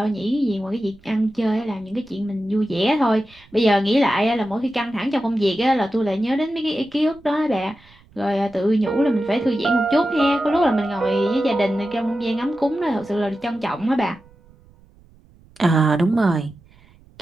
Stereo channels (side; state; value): right; noise; rumble, 27 dB below the sound